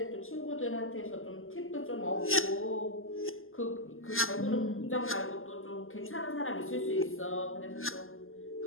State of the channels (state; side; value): late; right; 0.59 ms